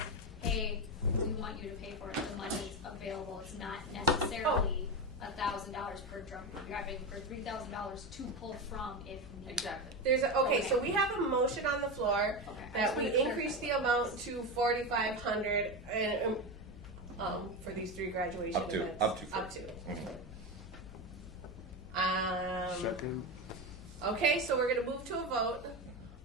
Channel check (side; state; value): left; noise; hum, 16 dB below the sound